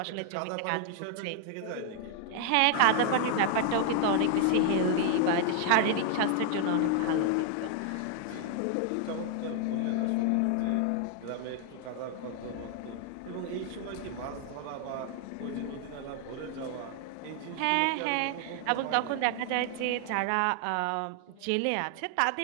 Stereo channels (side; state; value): both; different; correlation 0.00